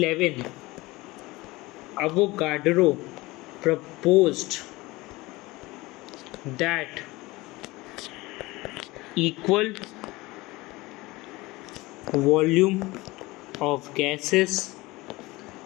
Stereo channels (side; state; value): right; quieter; 21.1 dB